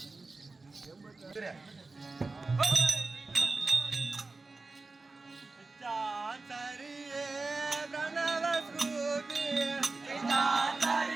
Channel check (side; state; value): left; quieter; 3.6 dB